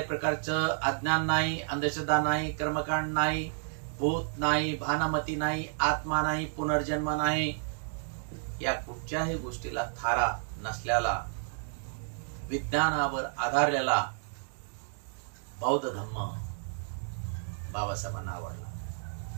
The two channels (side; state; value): left; silent; digital silence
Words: प्रकारचं अज्ञान नाही, अंधश्रद्धा नाही, कर्मकांड नाही, भूत नाही, भानमती नाही, आत्मा नाही, पुनर्जन्म नाही, या कुठच्याही गोष्टीला थारा नसलेला, विज्ञानावर आधारलेला बौद्ध धम्म बाबासाहेबांना आवडला.